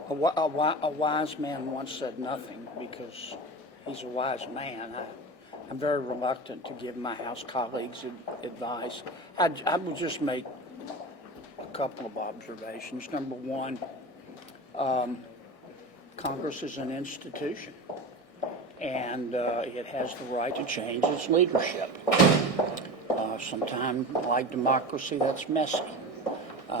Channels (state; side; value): late; right; 1.6 ms